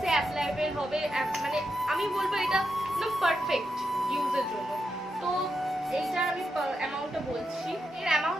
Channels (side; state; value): both; normal; correlation 0.85